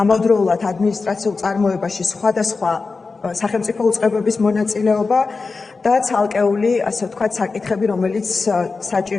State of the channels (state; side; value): quieter; right; 4.2 dB